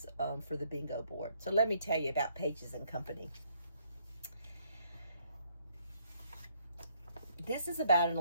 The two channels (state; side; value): inverted; both; correlation -0.69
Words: for the bingo board. So let me tell you about Pages and Company. This is about an